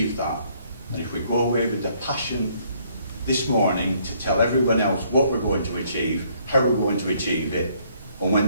that. And if we go away with the passion this morning to tell everyone else what we're going to achieve, how we're going to achieve it, and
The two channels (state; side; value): inverted; both; correlation -0.66